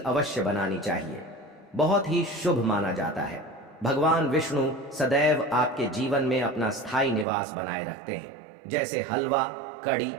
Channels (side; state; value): left; drops out; at 7.2 s